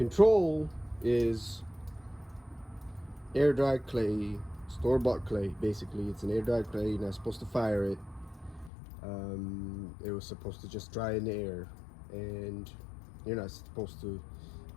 is air dried clay, store-bought clay. Basically, it's an air dried clay. You're not supposed to fire it. It was supposed to just dry in the air, and you're not supposed to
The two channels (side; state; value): right; drops out; at 8.7 s